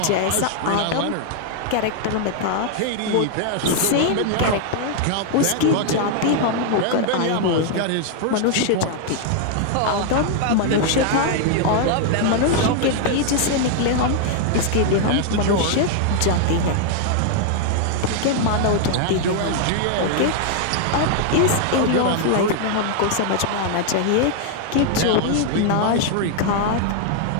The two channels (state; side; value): different; both; correlation 0.00